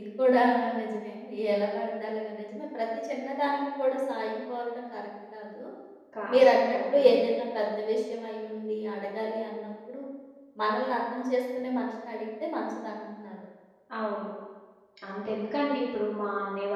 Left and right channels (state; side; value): identical; both; correlation 1.00